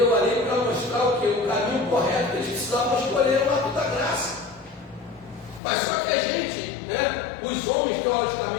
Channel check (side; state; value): right; drops out; at 5.6 s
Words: a lei para mostrar o quê? O caminho correto que eles precisavam escolher, é um ato da graça. Mas só que a gente, né, os homens